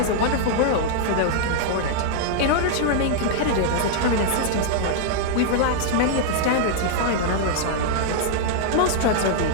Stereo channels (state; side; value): different; both; correlation -0.01